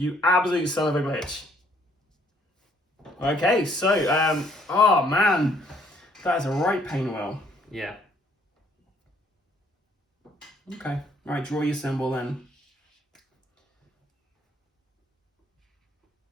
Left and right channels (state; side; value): normal; both; correlation 0.65